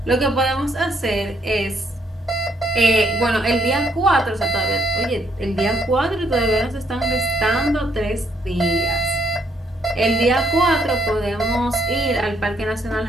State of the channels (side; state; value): both; normal; correlation 0.71